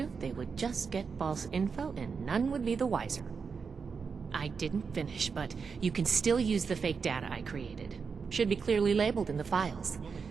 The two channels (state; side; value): quieter; left; 5.5 dB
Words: they would just get false info and none would be the wiser. I didn't finish, but you can still use the fake data I created. Should be clearly labeled in the files.